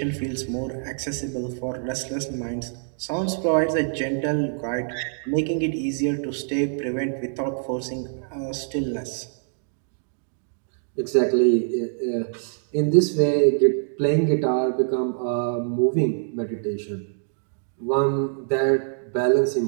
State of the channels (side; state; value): left; silent; digital silence